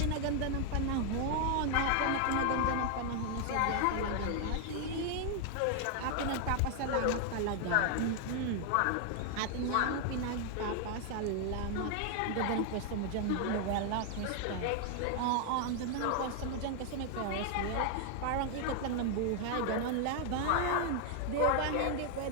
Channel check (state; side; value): different; both; correlation 0.00